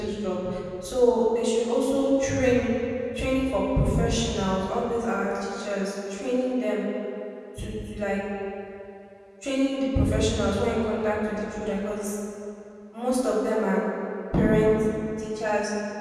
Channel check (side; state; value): both; identical; correlation 1.00